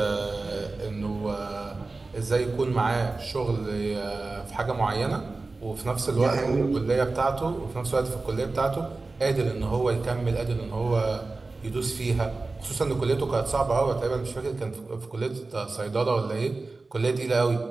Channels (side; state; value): left; quieter; 3.6 dB